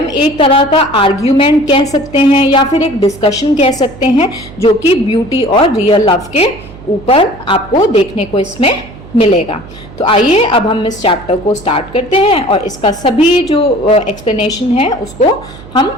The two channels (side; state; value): right; noise; hum, 18 dB below the sound